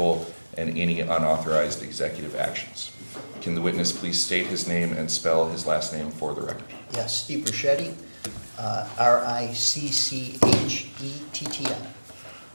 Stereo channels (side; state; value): both; inverted; correlation -1.00